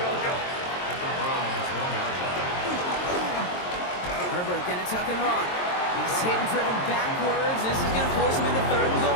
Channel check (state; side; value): late; right; 22 ms